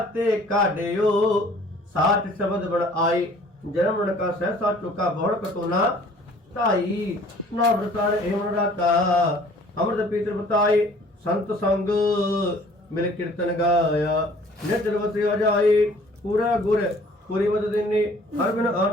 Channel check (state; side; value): normal; both; correlation 0.54